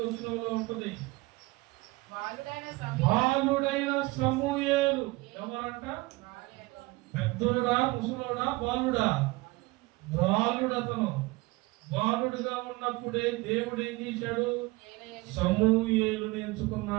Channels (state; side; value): quieter; left; 22.2 dB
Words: వచనంలో ఉంటుంది, బాలుడైన సమూయేలు. ఎవరంట? పెద్దోడా, ముసలోడా, బాలుడా? బాలుడతను. బాలుడుగా ఉన్నప్పుడే దేవుడు ఏం చేశాడు? సమూయేలుని